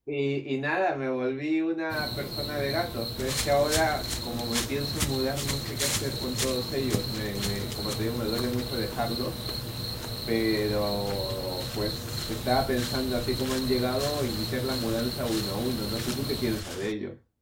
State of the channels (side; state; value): both; identical; correlation 1.00